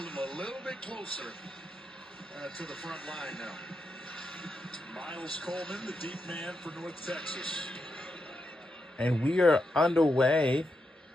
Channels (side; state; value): both; normal; correlation 0.85